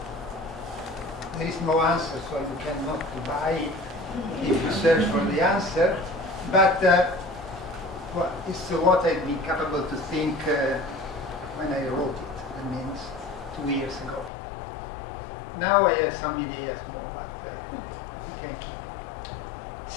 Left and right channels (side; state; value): right; drops out; at 14.3 s